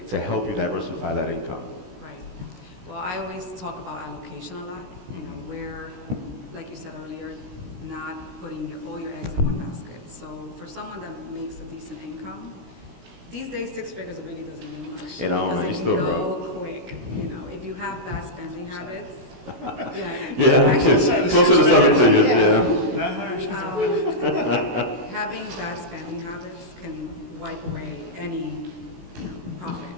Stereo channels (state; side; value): late; left; 16 ms